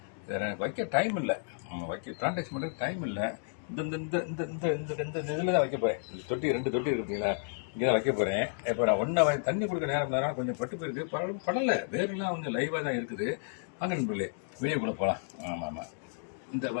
இதை எனக்கு வைக்க டைம் இல்லை, வைக்க பிளான்டேஷன் பண்ணுறதுக்கு டைம் இல்லை. இந்த இந்த இந்த இந்த இந்த இந்த இதில் தான் வைக்க போகிறேன். இந்த தொட்டி 2 தொட்டி இருக்கு பார்த்தீங்களா, இங்கே தான் வைக்க போகிறேன். இப்போ நான் ஒன்றா தண்ணி கொடுக்க நேரம் கொஞ்சம் பட்டு போயிருக்கு, படலை, வேறுலாம் கொஞ்சம் லைவாக தான் இருக்குது. வாங்க நண்பர்களே, வீடியோ கூட போகலாம். ஆமாம் ஆமாம், இந்த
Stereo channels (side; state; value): right; silent; digital silence